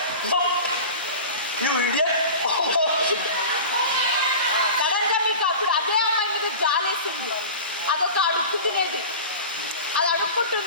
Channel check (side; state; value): both; inverted; correlation -0.34